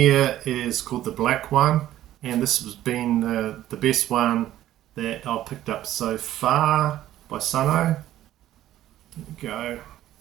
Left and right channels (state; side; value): quieter; left; 13.2 dB